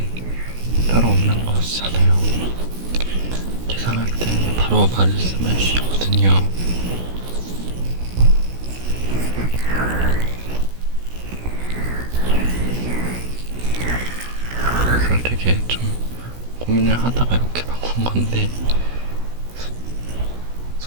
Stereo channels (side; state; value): left; late; 16 ms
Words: 따로 없는 것이잖아요. 계산할 때 바로 말씀해 주시거든요. 그래서 되게 좀 고민을 하다가 이렇게 바꾼 건데